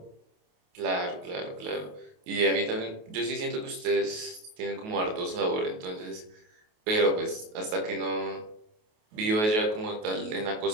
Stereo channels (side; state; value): left; late; 28 ms